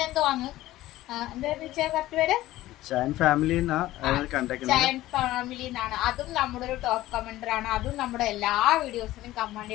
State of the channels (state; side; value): quieter; right; 15.9 dB